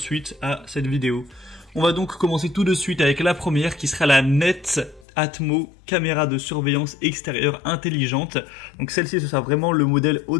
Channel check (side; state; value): right; drops out; at 5.1 s